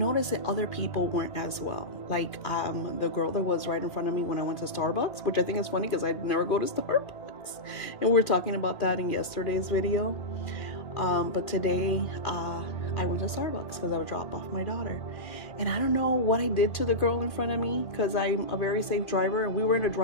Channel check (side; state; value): right; late; 2.4 ms